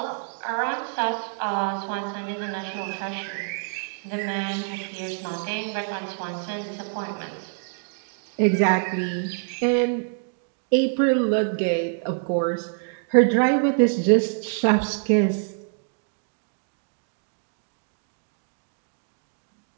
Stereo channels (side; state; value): left; silent; 61 dB below the other